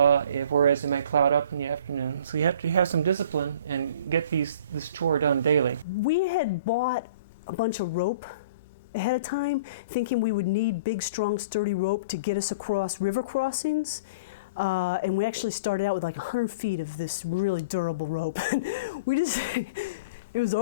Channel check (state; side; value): inverted; both; correlation -0.42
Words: it might cloud up in the afternoon. So you have to have some discipline and get this chore done daily. We had bought a bunch of rope ahead of time, thinking we would need big, strong, sturdy rope to get us across river crossings. And we actually started out with like 100 feet of this really durable rope. It was